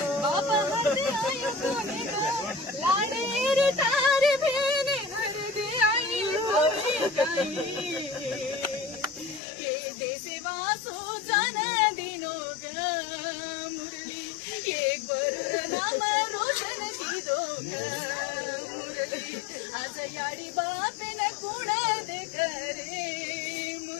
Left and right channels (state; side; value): drops out; right; at 9.4 s